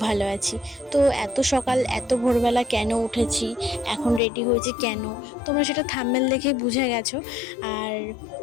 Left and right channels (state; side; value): drops out; right; at 4.2 s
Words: ভালো আছি। তো এত সকাল এত ভোরবেলা কেন উঠেছি, এখন রেডি হয়েছি কেন, তোমরা সেটা থাম্বনেল দেখে বুঝে গেছো। আর